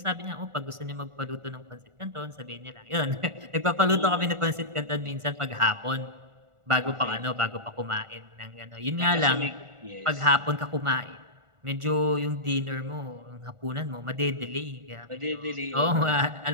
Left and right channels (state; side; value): late; left; 1.4 ms